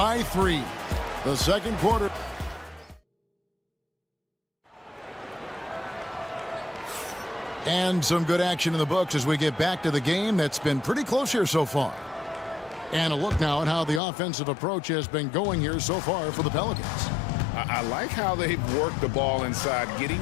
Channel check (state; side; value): drops out; right; at 14.0 s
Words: 3. The second quarter. And some good action in the books as we get back to the game that's been pretty close here so far. And a look now at how the offensive approach has been going here so far for the Pelicans. I like how they've worked the ball inside, getting